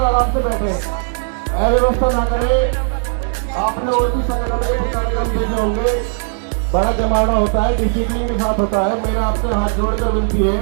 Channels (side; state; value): left; silent; digital silence